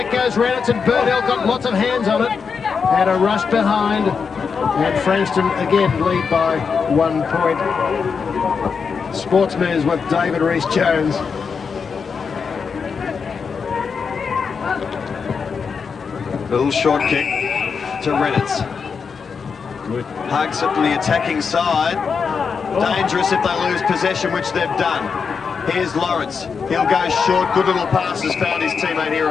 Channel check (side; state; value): right; quieter; 5.8 dB